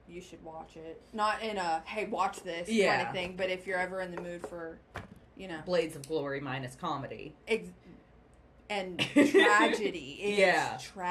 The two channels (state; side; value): identical; both; correlation 1.00